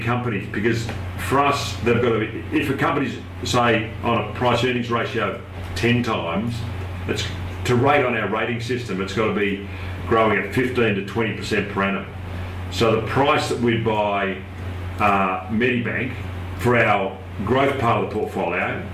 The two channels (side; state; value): both; identical; correlation 1.00